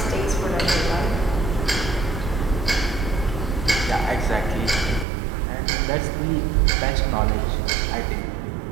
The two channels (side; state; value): left; drops out; at 5.1 s